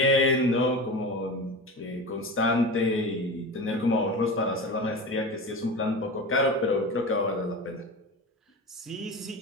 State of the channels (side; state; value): both; normal; correlation 0.29